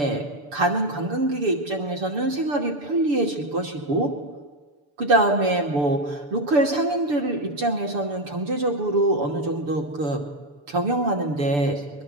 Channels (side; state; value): left; late; 6.9 ms